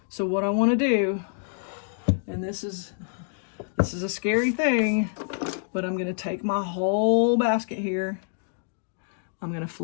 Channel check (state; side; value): silent; right; digital silence